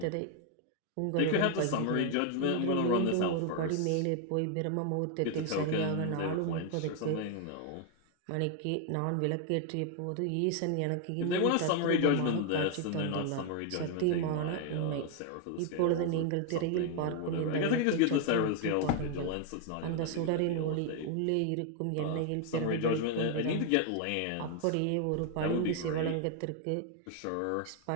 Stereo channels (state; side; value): different; both; correlation 0.00